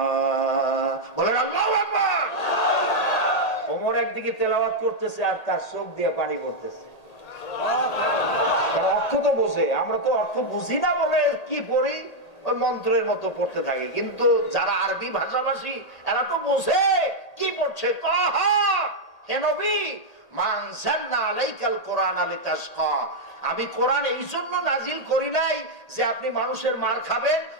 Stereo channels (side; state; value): right; late; 1.8 ms